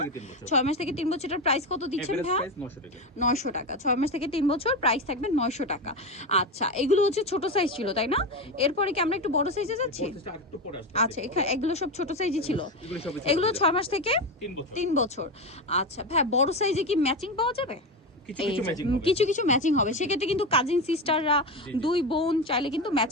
6 মাস থেকে 3 বছর। এটার প্রাইস কত দিচ্ছেন ভাই? 900 টাকা। 6 মাস থেকে 3 বছর, প্রাইস থাকবে 900 টাকা। আচ্ছা, এগুলো হচ্ছে ছোট সাইজ ছিল, তাই না? এরপরে কি আমরা একটু বড় সাইজে যাচ্ছি? আচ্ছা, এগুলো সব ছোট সাইজই ছিল। এগুলো 6 মাস থেকে 3 বছর। আচ্ছা ভাই, বড় সাইজে কি ম্যাচিং পাওয়া যাবে? কিছু কিছু ম্যাচিং হবে, সেক্ষেত্রে কিন্তু কাজিন সিস্টাররা, দুই বোন চাইলে কিন্তু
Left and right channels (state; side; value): normal; both; correlation 0.17